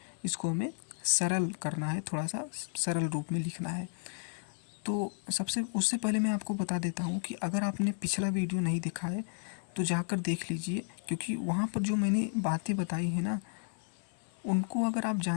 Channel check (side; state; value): right; silent; digital silence